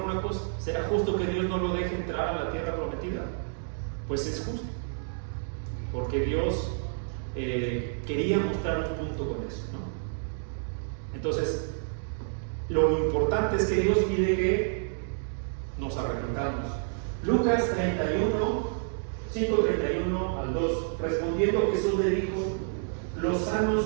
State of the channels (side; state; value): left; silent; digital silence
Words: cosa. ¿Será justo que Dios no lo deje entrar a la tierra prometida? Pues es justo, porque Dios quería mostrar un punto con eso, ¿no? Entonces, lo importante es que Dios pide que nos arrepentamos. Lucas 31, 5:31 al 2. Respondiendo Jesús le dijo, los